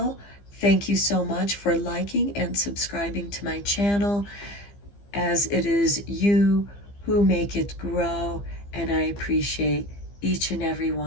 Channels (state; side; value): late; right; 15 ms